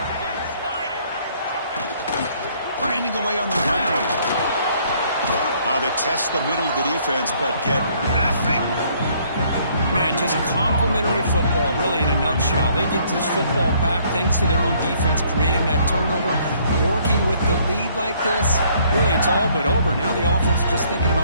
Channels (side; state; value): both; inverted; correlation -0.64